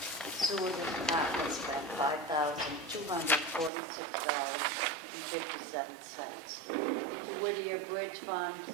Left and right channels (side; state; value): left; drops out; at 3.7 s